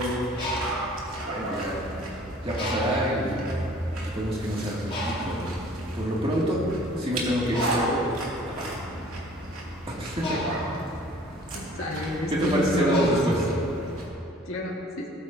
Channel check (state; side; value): normal; both; correlation 0.52